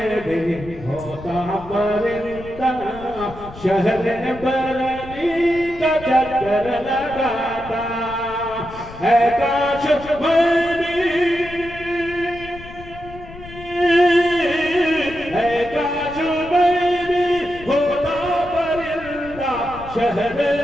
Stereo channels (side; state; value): left; noise; rumble, 16 dB below the sound